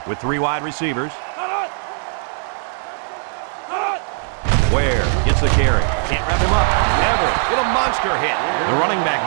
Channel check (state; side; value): silent; left; 66 dB below the other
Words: with 3 wide receivers. Ware gets the carry. Can't wrap him up. Everett with a monster hit. The running back